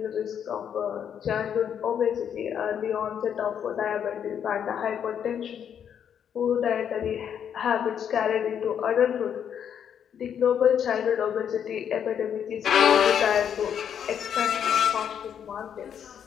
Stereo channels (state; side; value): quieter; right; 8.5 dB